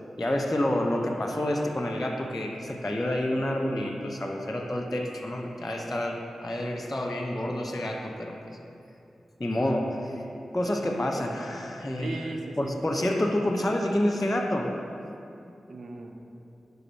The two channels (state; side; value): normal; both; correlation 0.94